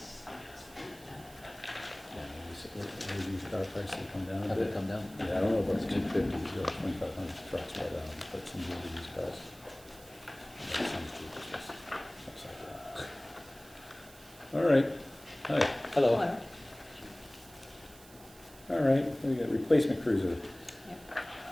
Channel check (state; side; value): noise; right; hiss, 21 dB below the sound